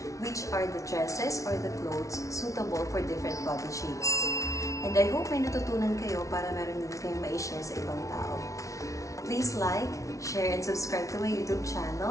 which are the dresses or the clothes suitable for different body shapes. And I hope may natutunan kayo para meron din kayong ma-share sa ibang tao. Please like, share, and subscribe to my YouTube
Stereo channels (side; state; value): right; late; 0.15 ms